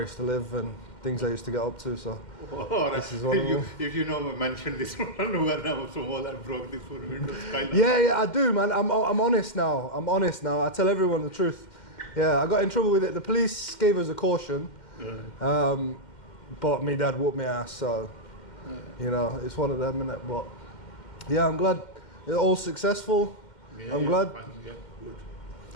used to live and things I used to get up to. So this is one of them. If you know, mention this one when I was small and broke this food window skylight. Yeah, I do, man. I'm honest now. I'm honest now. I tell everyone the truth. Yeah, I got in trouble with it. The police gave us a caution, but me dad whooped my ass. So you know, it's one of them, innit? But yeah, I'm glad it's all successful. Yeah, I'm glad. Fine, yeah, good.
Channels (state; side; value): late; right; 2.1 ms